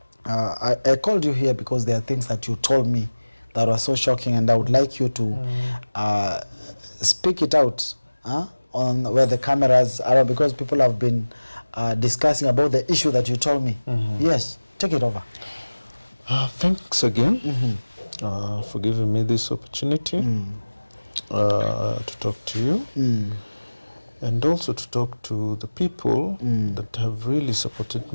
called you here because there are things that you told me that were so shocking, and I would like you to speak it out on where the cameras are, because people have been discussing about the issue that you told me. Yes, take it over. Thanks again for giving me this opportunity to talk to you, and also to talk to the people that have really supported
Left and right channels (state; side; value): inverted; both; correlation -1.00